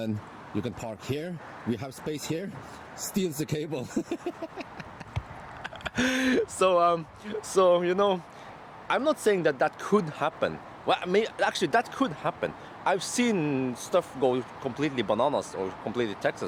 you can park here, we have space here, steals the cable. So you know, I'm not saying that could happen. Well, I mean, actually that could happen. I've seen stuff go completely bananas or completely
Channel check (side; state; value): both; identical; correlation 1.00